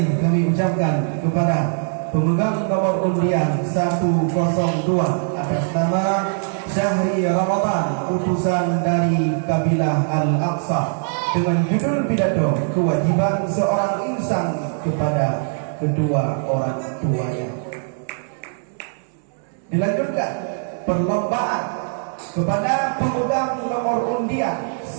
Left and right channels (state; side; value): silent; left; 65 dB below the other